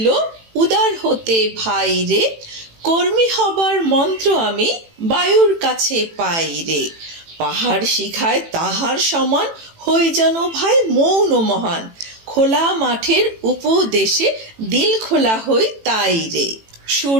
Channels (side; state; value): left; late; 18 ms